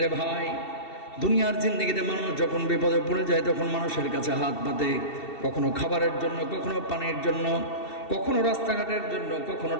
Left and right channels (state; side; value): late; right; 2.7 ms